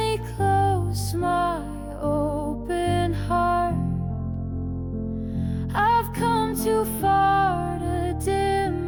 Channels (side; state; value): both; identical; correlation 1.00